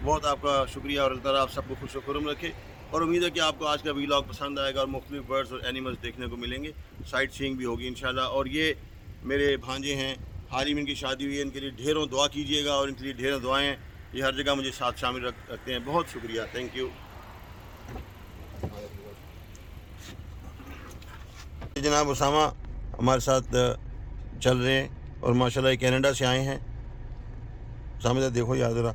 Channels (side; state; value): both; identical; correlation 1.00